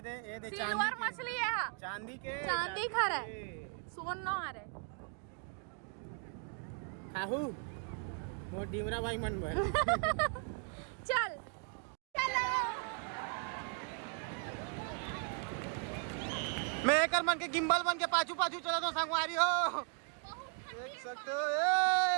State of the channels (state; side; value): quieter; left; 39.9 dB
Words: दे सिल्वर मछली है, चांदी के, चांदी खा रहे, सोन न आ रहे। खाहू मोर डिमरा भाई मन भर। चल मैं एक मन के गिम्बल बन के पाछू पाछू चला तो संगवारी हो, देख सकते हो।